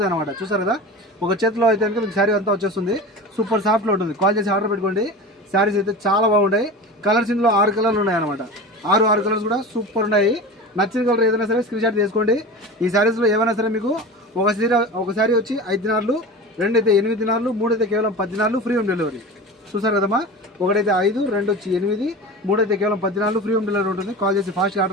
అనమాట. చూసారు కదా, ఒక చేతిలో అయితే కనుక మీకు శారీ అంతా వచ్చేస్తుంది. సూపర్ సాఫ్ట్లో ఉంటుంది. కాల్ చేసి ఆర్డర్ పెట్టుకోండి. శారీస్ అయితే చాలా బాగుంటాయి. కలర్స్ ఇందులో 6 కలర్లు ఉన్నాయి అనమాట. 6 కలర్స్ కూడా సూపర్ ఉన్నాయి. నచ్చిన కలర్ ఏదైనా సరే స్క్రీన్ షాట్ తీసుకోండి. ఈ శారీస్లో ఏమైనా సరే మీకు ఒక శారీ వచ్చి 5 దినార్లు, 2 అయితే 8 దినార్లు, 3 అయితే కేవలం 10 దినార్లు, ఫ్రీ హోమ్ డెలివరీ. చూసారు కదమ్మా, 1 అయితే 5, 2 వచ్చి 8, 3 అయితే కేవలం 10 దినార్లు, ఫ్రీ హోమ్ డెలివరీ ఉంటుంది. కాల్ చేసి ఫాస్ట్గా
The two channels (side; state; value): both; normal; correlation 0.32